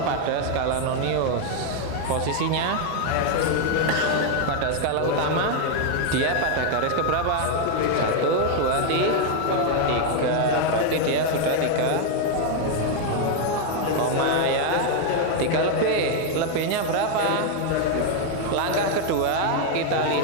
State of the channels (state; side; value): different; both; correlation 0.01